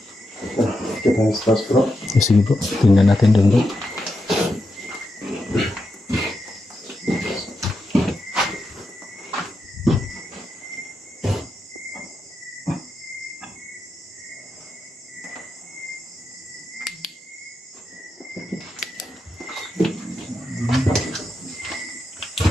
Kita yung stars bro. Sige bro, tingnan natin doon bro.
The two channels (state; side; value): normal; both; correlation 0.86